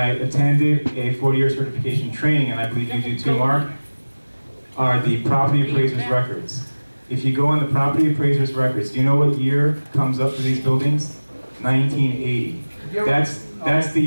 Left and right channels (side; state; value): both; inverted; correlation -1.00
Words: attended a 40-year certification training, and I believe you do too, Mark, are the property appraiser's records. If you go on the property appraiser's records, do you know what year comes up for these buildings? 1980. That's the